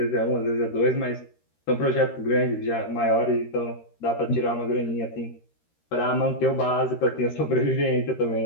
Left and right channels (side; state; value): right; late; 13 ms